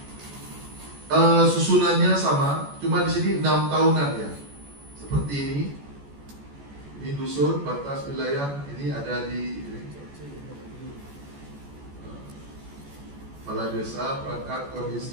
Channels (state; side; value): late; left; 14 ms